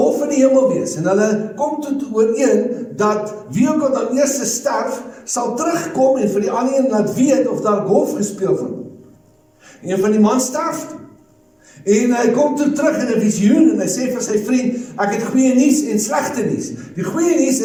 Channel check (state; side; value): identical; both; correlation 1.00